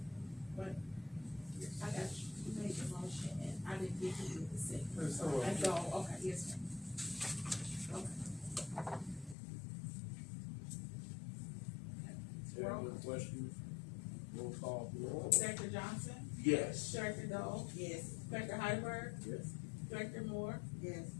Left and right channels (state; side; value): drops out; right; at 9.3 s